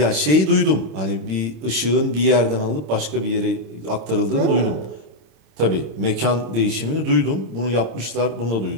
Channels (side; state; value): left; late; 26 ms